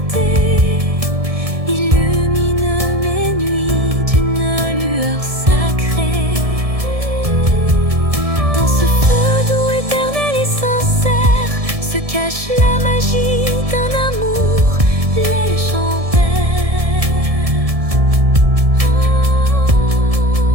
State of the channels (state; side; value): late; left; 1.7 ms